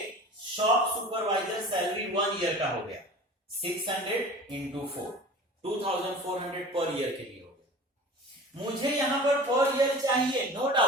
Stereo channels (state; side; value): normal; both; correlation 0.39